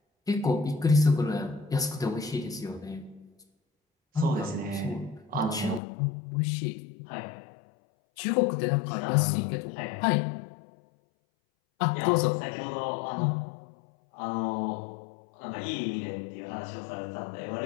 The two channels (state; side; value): drops out; right; at 5.8 s